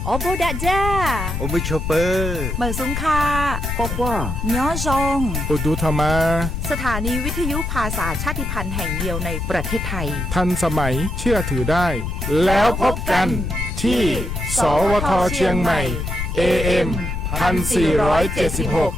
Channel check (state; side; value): noise; left; rumble, 3 dB below the sound